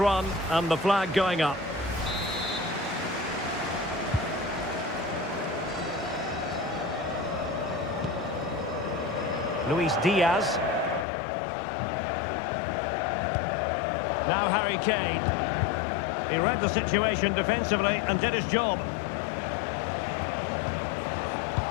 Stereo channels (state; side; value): drops out; right; at 11.1 s